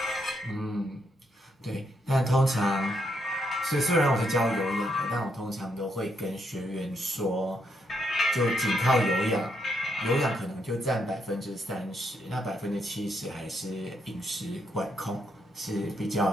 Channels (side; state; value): both; normal; correlation 0.77